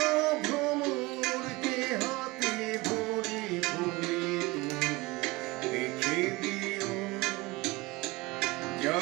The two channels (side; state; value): left; quieter; 22.2 dB